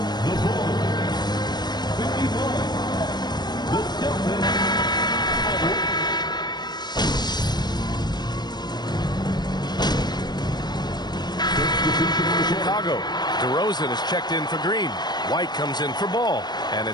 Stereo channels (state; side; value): late; right; 0.20 ms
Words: the Bulls 51, the Celtics. Chicago. DeRozan is checked in for Green. White comes in for Ball. And